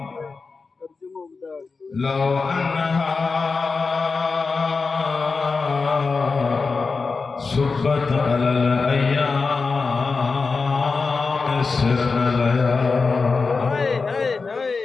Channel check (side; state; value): right; quieter; 4.4 dB